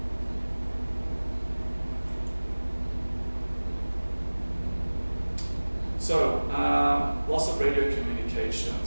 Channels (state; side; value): inverted; both; correlation -1.00